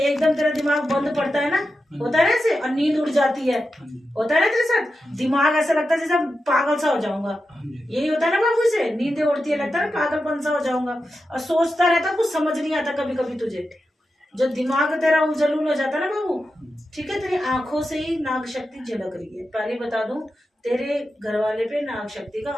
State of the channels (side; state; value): both; normal; correlation 0.90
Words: तेरा दिमाग बंद पड़ता है ना, होता है ना ऐसे, और नींद उड़ जाती है, होता है ना तेरे साथ? दिमाग ऐसा लगता है जैसे पागल सा हो जाऊंगा, यही होता है ना बाबू से? नींदें उड़ती है, लगता है ना पागलपन सा हो जाऊंगा, और सोचता रहता, कुछ समझ नहीं आता कभी कभी तुझे। जो दिमाग तेरा उजलूल हो जाता है ना बाबू, ठीक है? तेरी आंखों से ही नाग शक्ति झलक रही है। पहले बता दूं, तेरे घर वाले पे नाग शक्ति का